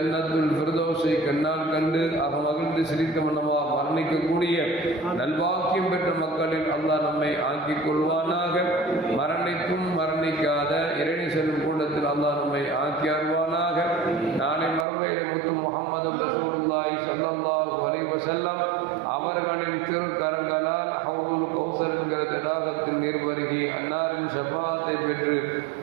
ஃபிர்தௌஸை கண்ணால் கண்டு மகிழ்ந்து சிரித்த மன்னமாக மரணிக்கக்கூடிய நல்வாக்கியம் பெற்ற மக்களில் அல்லாஹ் நம்மை ஆக்கிக் கொள்வானாக. மரணிக்கும் மரணிக்காத இறைநி செல்லும் கூட்டத்தில் அல்லாஹ் நம்மை ஆக்கி அருள்வானாக. நாளை மறுமையிலே முத்து முஹம்மது ரசூலுல்லாஹி ஸல்லல்லாஹு அலைஹி வஸல்லம் அவர்களின் திருக்கரங்களால் ஹவுதுல் கௌசர் என்கிற தடாகத்தின் நீர் வருகி அன்னாரின் ஷஃபாஅத்தை பெற்று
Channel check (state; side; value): drops out; left; at 14.9 s